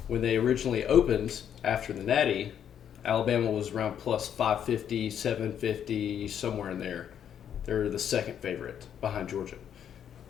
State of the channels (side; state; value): right; quieter; 9.1 dB